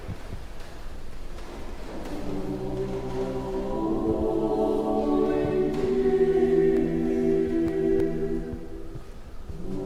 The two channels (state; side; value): identical; both; correlation 1.00